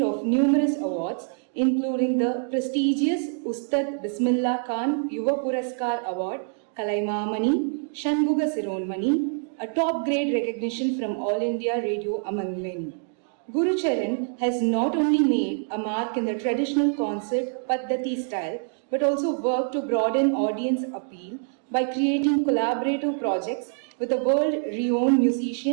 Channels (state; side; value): silent; left; 60 dB below the other